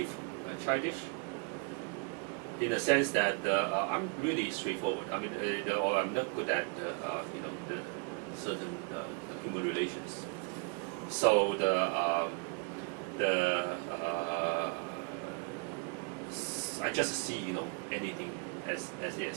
childish, in the sense that I'm really straightforward. I mean, or I'm not good at the certain human relations. So I just see anything as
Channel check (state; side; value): quieter; left; 36.3 dB